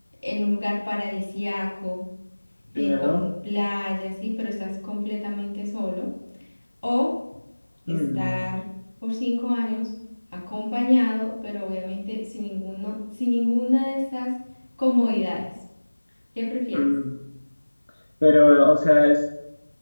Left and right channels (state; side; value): inverted; both; correlation -1.00